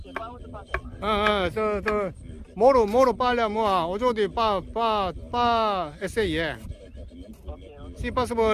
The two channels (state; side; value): identical; both; correlation 1.00